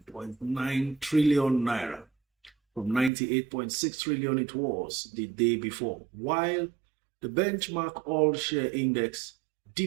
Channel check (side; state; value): left; drops out; at 3.1 s